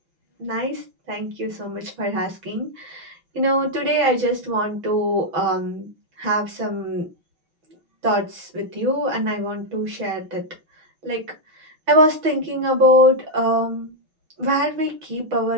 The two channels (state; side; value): late; left; 6.1 ms